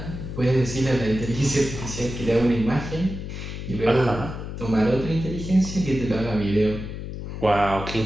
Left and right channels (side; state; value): left; noise; hum, 8 dB below the sound